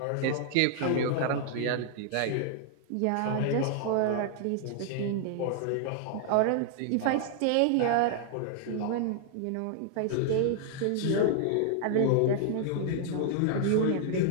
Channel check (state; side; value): different; both; correlation -0.01